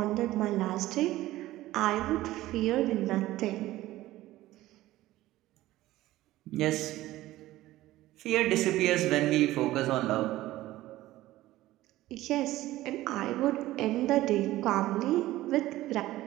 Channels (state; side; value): quieter; left; 16.2 dB